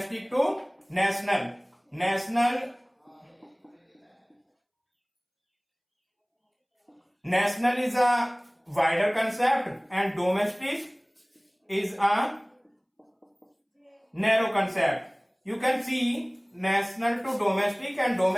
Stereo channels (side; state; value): both; identical; correlation 1.00